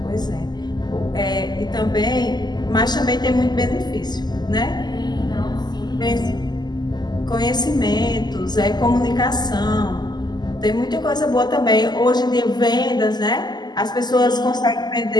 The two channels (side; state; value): right; late; 0.21 ms